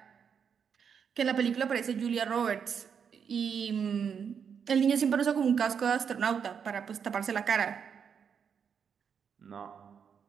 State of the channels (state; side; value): quieter; left; 7.1 dB